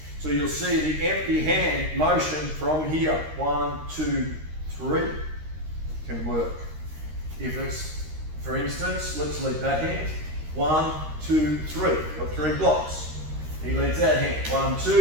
So you'll see the empty hand motion from here, 1, 2, 3, can work. If it's, for instance, let's leave that hand, 1, 2, 3. You've got 3 blocks. He leads that hand, 1,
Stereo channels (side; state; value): left; late; 13 ms